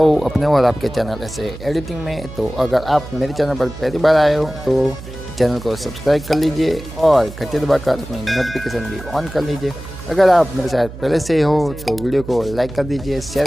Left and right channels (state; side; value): noise; right; hum, 13 dB below the sound